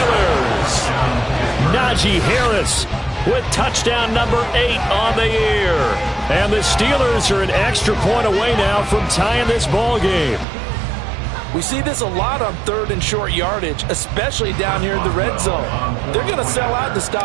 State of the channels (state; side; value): drops out; left; at 10.5 s